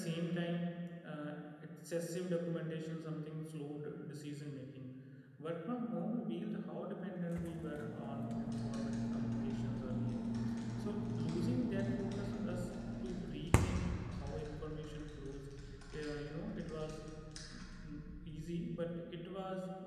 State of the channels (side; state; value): both; identical; correlation 1.00